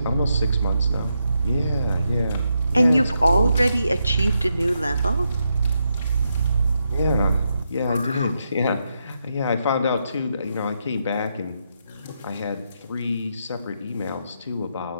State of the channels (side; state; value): both; inverted; correlation -0.83